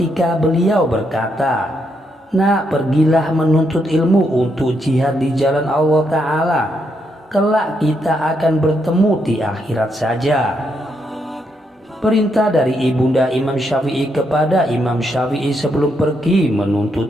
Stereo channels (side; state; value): both; normal; correlation 0.78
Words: beliau berkata, "Nak, pergilah menuntut ilmu untuk jihad di jalan Allah Ta'ala. Kelak kita akan bertemu di akhirat saja." Perintah dari ibunda Imam Syafi'i kepada Imam Syafi'i sebelum pergi